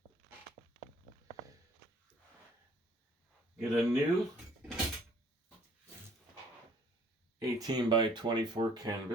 get a new 18 by 24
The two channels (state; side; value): normal; both; correlation 0.58